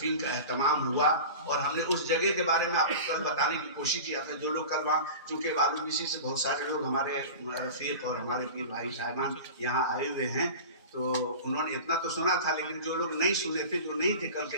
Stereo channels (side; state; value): both; inverted; correlation -0.33